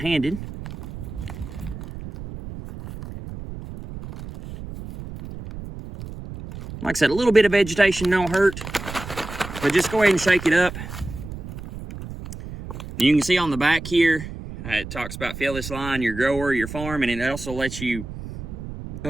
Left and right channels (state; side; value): noise; right; rumble, 11 dB below the sound